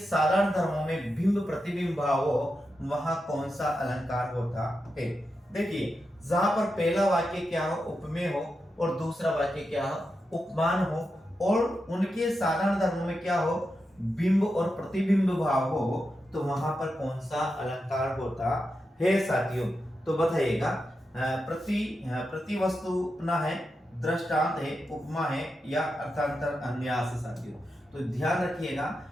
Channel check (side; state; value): both; normal; correlation 0.88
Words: धर्मों में बिंब प्रतिबिंब भाव हो, वहां कौन सा अलंकार होता है। देखिए जहां पर पहला वाक्य क्या हो, उपमेय हो, और दूसरा वाक्य क्या हो, उपमान हो, और उनके साधारण धर्मों में क्या हो, बिंब और प्रतिबिंब भाव हो, तो वहां पर कौन सा अलंकार होता है साथियों। तो बताइएगा। प्रति वस्तु अपना है, दृष्टांत है, उपमा है, या अर्थांतर अन्यास है साथियों। तो ध्यान रखिएगा,